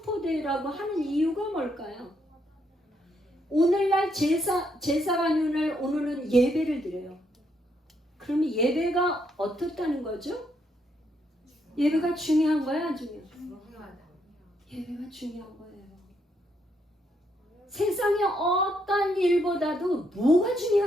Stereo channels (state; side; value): normal; both; correlation 0.75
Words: 하는 이유가 뭘까요? 오늘날 제사가 오늘은 예배를 드려요. 그러면 예배가 어떻다는 거죠? 예배가 중요한 거야, 안 중요해? 예배가 중요한 거예요. 세상의 어떤 일보다도 뭐가